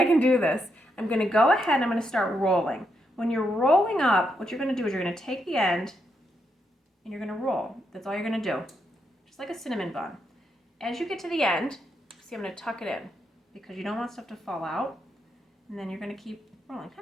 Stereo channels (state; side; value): normal; both; correlation 0.80